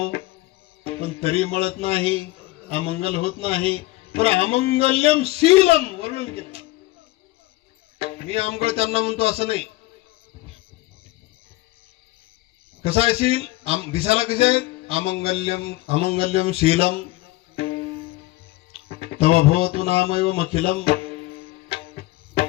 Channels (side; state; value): right; quieter; 19.3 dB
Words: पण तरी मळत नाही, अमंगल होत नाही. पण अमंगल्यम शीलम वर्णन केलं. मी आमगळ त्यांना म्हणतो असं नाही. कसा आहे शील? दिसायला कसे आहेत? अमंगल्यम शीलम तव भवतु नामैव मखिलम.